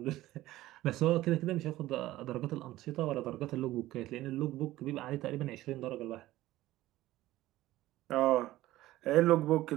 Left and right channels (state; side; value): quieter; left; 16.1 dB